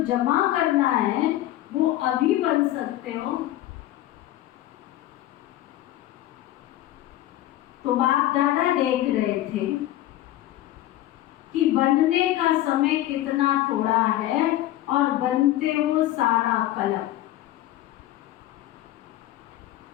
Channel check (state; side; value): quieter; right; 14.4 dB